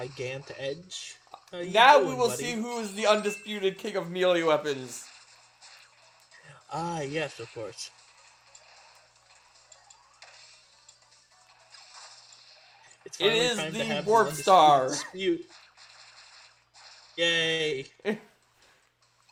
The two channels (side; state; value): both; identical; correlation 1.00